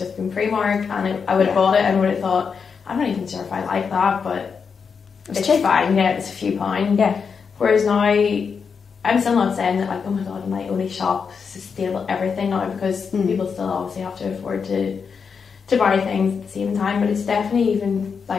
been Primark, and I would have bought it and would have thought, I'm not even sure if I like that, but it's fine. Yeah, it's a few pounds. Yeah. Whereas now, I'm still not saying that like, oh my god, I might only shop sustainable everything now, because people still obviously have to afford to buy things at the same time. But it's definitely even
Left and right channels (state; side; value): quieter; right; 5.9 dB